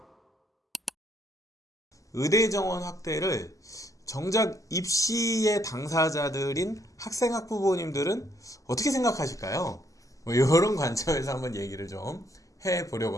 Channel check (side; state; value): both; normal; correlation 0.70